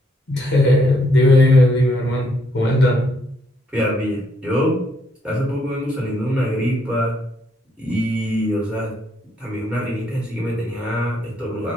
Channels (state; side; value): normal; both; correlation 0.72